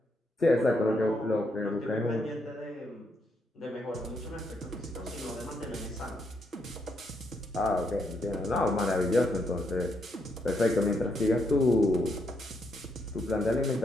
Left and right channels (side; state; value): both; normal; correlation 0.77